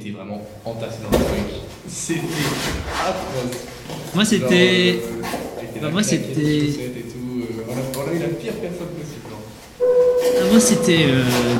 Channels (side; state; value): both; identical; correlation 1.00